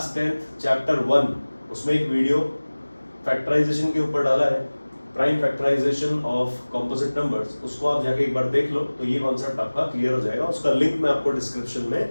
10 चैप्टर 1 उसमें एक वीडियो फैक्टराइजेशन के ऊपर डाला है, prime factorization of composite numbers, उसको आप जाके एक बार देख लो तो ये कॉन्सेप्ट आपका क्लियर हो जाएगा। उसका लिंक मैं आपको डिस्क्रिप्शन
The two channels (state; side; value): inverted; both; correlation -1.00